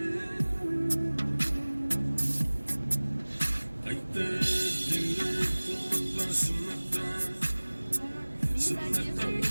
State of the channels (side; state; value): both; inverted; correlation -1.00